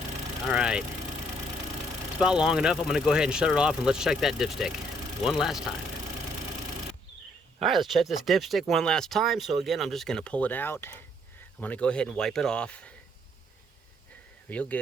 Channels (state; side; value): normal; both; correlation 0.67